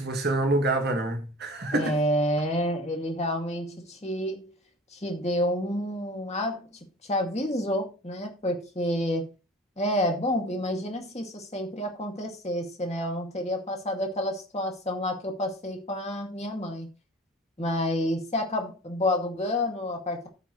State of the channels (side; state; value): both; normal; correlation 0.40